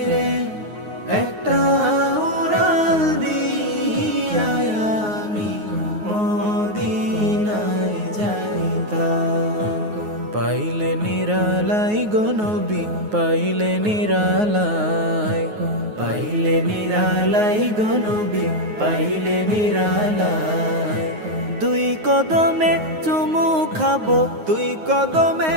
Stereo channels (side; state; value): left; late; 9.5 ms